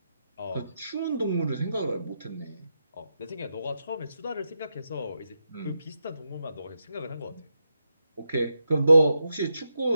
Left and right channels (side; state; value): both; inverted; correlation -0.85